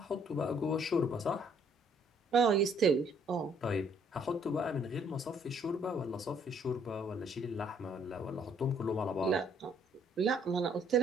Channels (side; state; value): both; normal; correlation 0.64